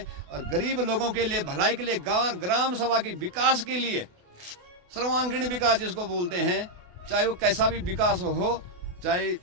और गरीब लोगों के लिए, भलाई के लिए, ग्राम सभा के विकास के लिए, सर्वांगीण विकास जिसको बोलते हैं, चाहे वो कैसा भी विकास हो, चाहे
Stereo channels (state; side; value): late; left; 28 ms